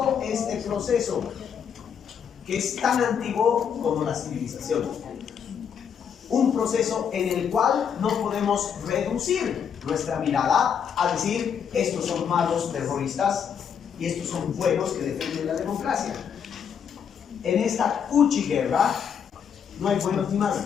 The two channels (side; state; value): right; quieter; 7.6 dB